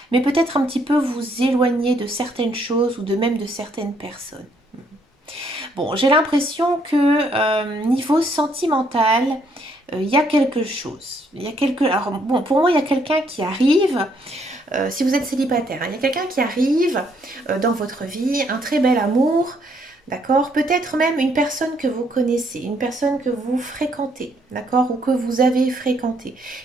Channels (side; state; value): both; normal; correlation 0.70